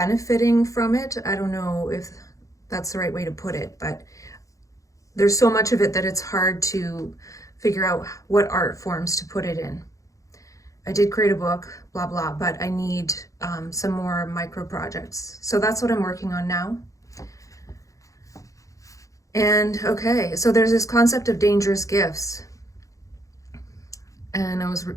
from it. I don't know if that's the right way to put it, but there's so much of it that it's hard to figure out what art forms to put it in. I did create a book, blah, blah, but I need some more micro projects. So that's what I'm working on now. And okay, so there's this concept of dangerous gifts. And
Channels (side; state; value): right; late; 0.16 ms